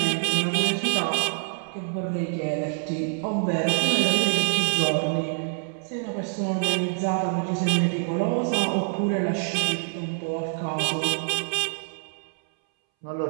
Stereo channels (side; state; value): left; silent; 61 dB below the other